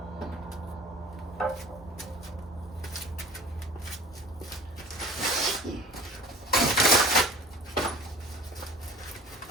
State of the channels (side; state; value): both; normal; correlation 0.45